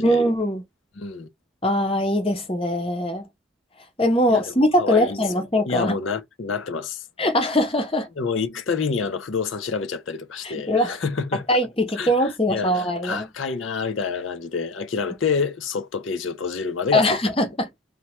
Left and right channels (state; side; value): normal; both; correlation 0.39